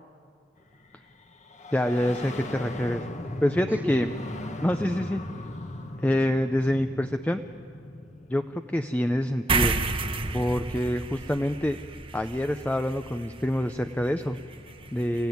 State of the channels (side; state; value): both; normal; correlation 0.84